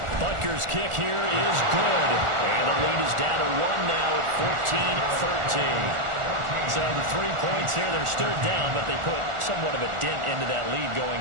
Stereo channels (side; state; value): left; late; 1.4 ms